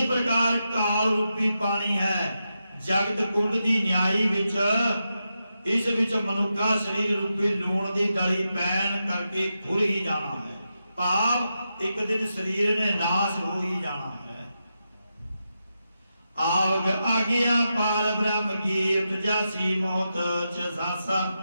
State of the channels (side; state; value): both; inverted; correlation -0.88